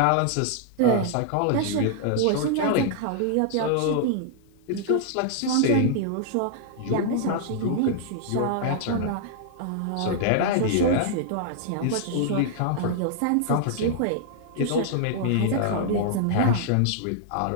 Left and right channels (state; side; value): different; both; correlation -0.01